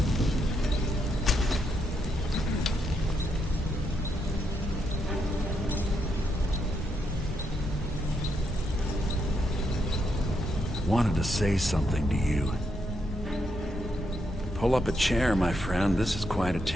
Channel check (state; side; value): normal; both; correlation 0.79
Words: Wanted to say something to you. Pull up a chair, my friend. This is quite a